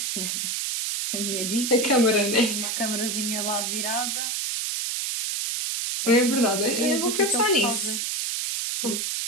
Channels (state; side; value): noise; right; hiss, 1 dB below the sound